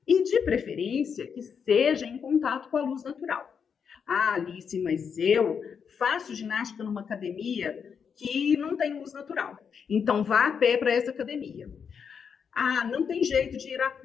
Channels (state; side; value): quieter; right; 6.7 dB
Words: e, de preferência, que seja em contato com a luz natural. Alice, mas eu faço ginástica numa academia que não tem luz natural, então vá a pé para essa academia. Não tem jeito de ir a